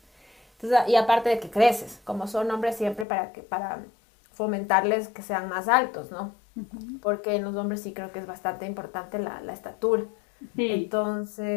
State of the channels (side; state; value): right; drops out; at 3.1 s